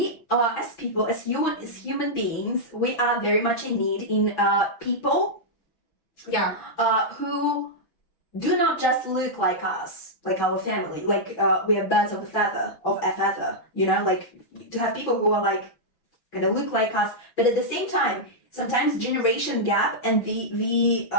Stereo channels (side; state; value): right; late; 6.1 ms